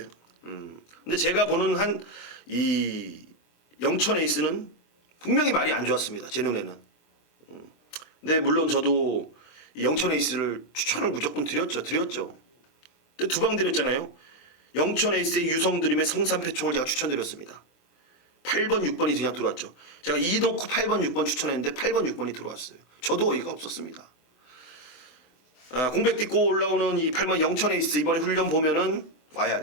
근데 제가 보는 한 이 영천 에이스는 분명히 말이 안 좋았습니다. 제 눈에는. 근데 물론 저도 이 영천 에이스를 추천을 무조건 드렸죠. 근데 2방 드렸잖아요. 영천 에이스의 유성드림의 성산패총을 제가 추천드렸습니다. 8번 6번이 그냥 들어왔죠. 제가 2 놓고 8번 6번 추천했는데 8번 6번이 들어왔어요. 저도 어이가 없었습니다. 공백 딛고 올라오는 이 8번 영천 에이스 이번에 훈련 보면은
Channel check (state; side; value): late; right; 24 ms